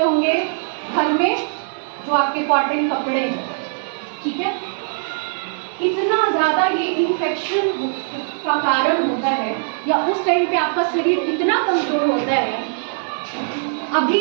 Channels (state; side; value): silent; left; 56 dB below the other